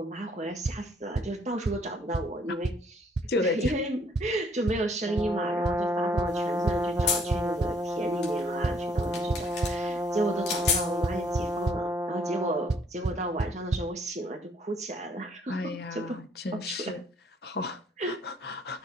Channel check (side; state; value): both; normal; correlation 0.64